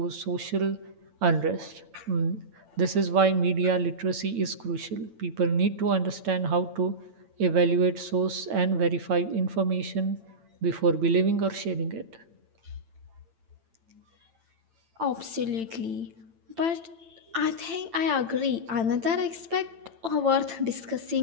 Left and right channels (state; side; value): late; left; 8.9 ms